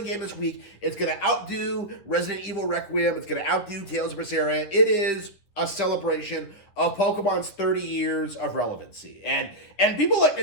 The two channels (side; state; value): right; late; 10 ms